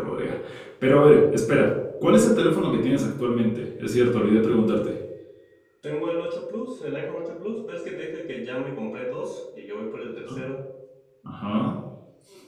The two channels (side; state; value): both; identical; correlation 1.00